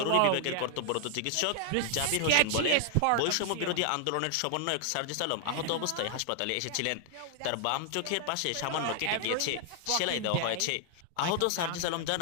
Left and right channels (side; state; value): both; different; correlation 0.00